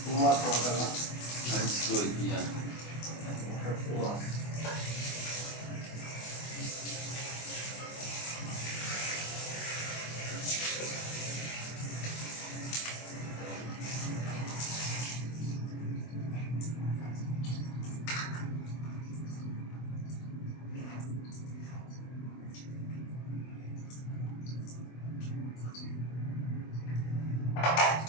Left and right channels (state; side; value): late; right; 24 ms